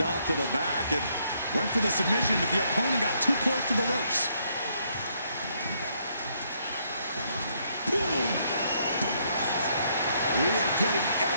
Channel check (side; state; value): both; inverted; correlation -0.72